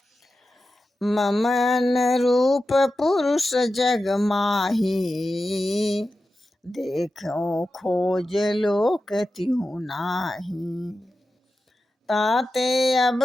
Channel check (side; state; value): both; normal; correlation 0.92